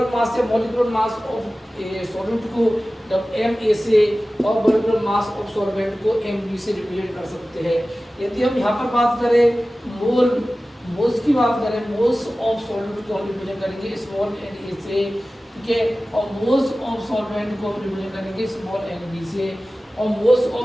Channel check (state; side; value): normal; both; correlation 0.96